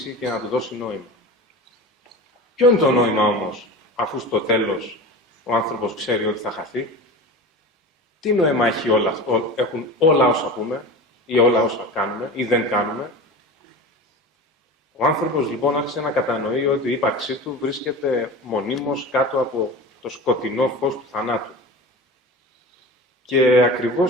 και να του δώσει νόημα. Ποιο είναι το νόημα όμως, αφού στο τέλος ο άνθρωπος ξέρει ότι θα χαθεί? Τι νόημα έχουν όλα όσα πούμε ή όλα όσα κάνουμε ή δεν κάνουμε? Ο άνθρωπος λοιπόν άρχισε να κατανοεί ότι η ύπαρξή του βρίσκεται μονίμως κάτω από το σκοτεινό φως του θανάτου. Και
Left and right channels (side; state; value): both; normal; correlation 0.31